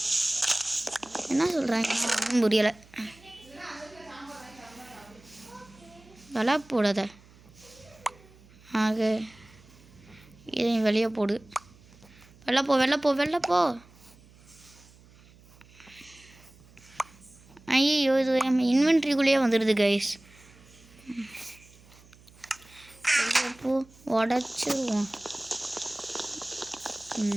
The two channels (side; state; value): right; noise; hum, 25 dB below the sound